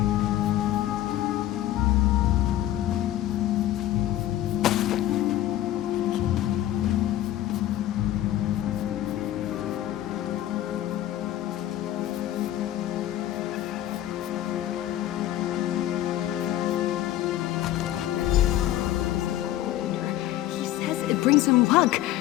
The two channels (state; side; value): quieter; right; 13.4 dB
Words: Brings him luck.